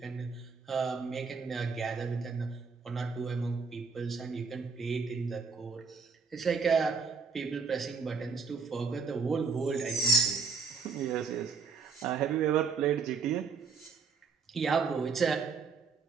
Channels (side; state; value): left; quieter; 5.1 dB